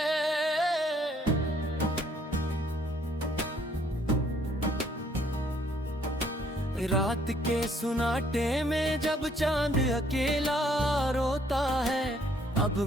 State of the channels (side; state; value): both; normal; correlation 0.65